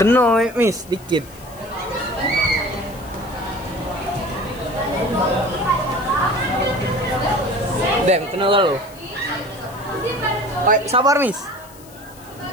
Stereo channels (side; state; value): left; noise; hiss, 22 dB below the sound